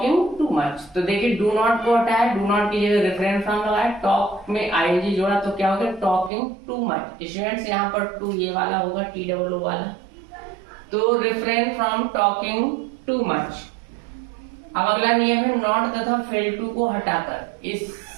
too much. तो देखिए डू नॉट को हटाया, डू नॉट की जगह रिफ्रेन फ्रॉम लगाया, टॉक में आईएनजी जोड़ा तो क्या हो गया टॉकिंग टू मच। स्टूडेंट्स, यहाँ पर टू ये वाला होगा TOO वाला। तो refrain from talking too much. अब अगला नियम है नॉट तथा फेल टू को हटाकर।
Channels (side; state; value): left; drops out; at 6.3 s